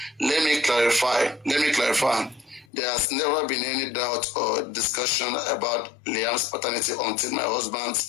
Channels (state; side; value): drops out; right; at 2.7 s